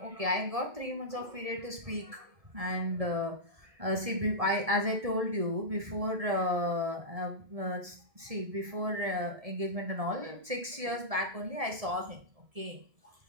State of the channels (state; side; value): late; left; 1.7 ms